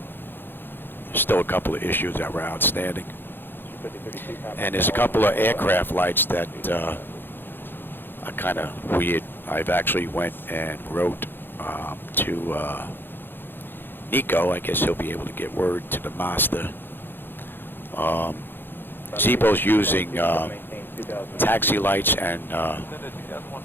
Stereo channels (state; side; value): late; right; 0.10 ms